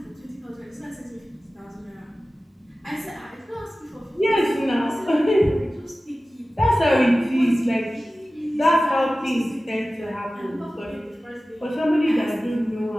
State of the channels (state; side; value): normal; both; correlation 0.96